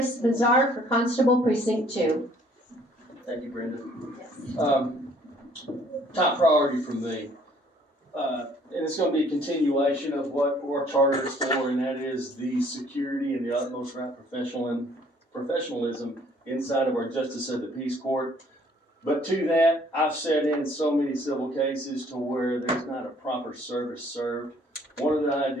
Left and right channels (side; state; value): both; normal; correlation 0.60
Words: Bazar for Constable Precinct 2. Thank you, Brenda. Top priority for me and it's gonna be a continuation of what our charter is for, and that is the security and the utmost right professionalism inside of our Justice of the Peace Court. But to that, I've sat in so many civil cases to where there's not a proper service served. One of the